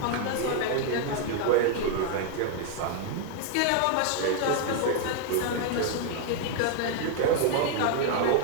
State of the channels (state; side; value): different; both; correlation 0.00